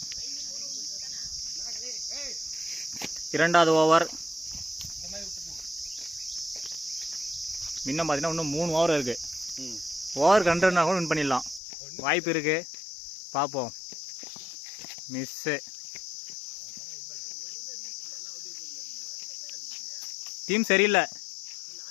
இரண்டாவது ஓவர். இன்னும் பார்த்தீங்கன்னா இன்னும் 3 ஓவர் இருக்கு. ஓவருக்கு 2 ரன்னா கூட வின் பண்ணிடலாம். வாய்ப்பு இருக்கு. பார்ப்போம். மிஸ்ஸு. டீம் சரியில்லை.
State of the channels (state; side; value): drops out; right; at 11.6 s